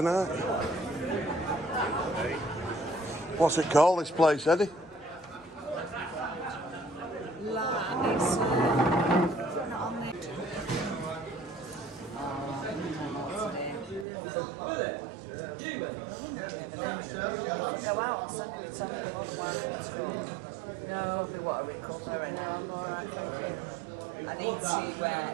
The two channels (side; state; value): left; drops out; at 14.1 s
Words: What's it called, this place, Eddie? Go out and send them on the No, what a recovery. No, I'm alright, thank you. I need